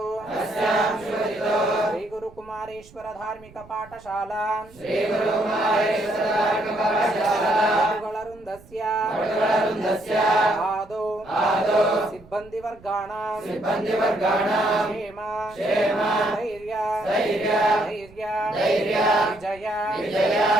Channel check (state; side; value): noise; right; rumble, 24 dB below the sound